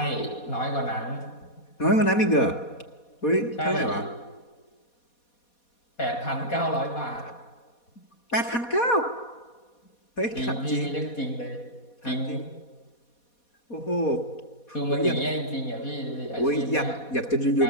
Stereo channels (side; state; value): right; late; 4.2 ms